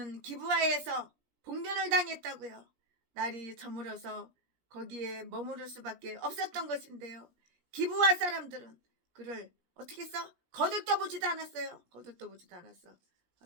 기브아에서 봉변을 당했다고요. 날이 저물어서 거기에 머무를 수밖에 없었던 것인데요. 기브아 사람들은 그를 어떻게 했어? 거들떠보지도 않았어요.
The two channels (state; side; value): late; left; 17 ms